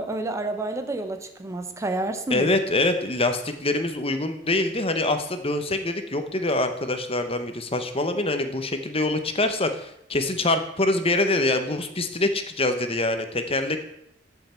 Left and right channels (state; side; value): normal; both; correlation 0.33